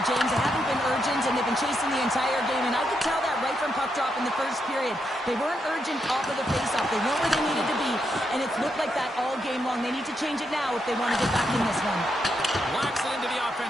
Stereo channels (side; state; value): both; normal; correlation 0.81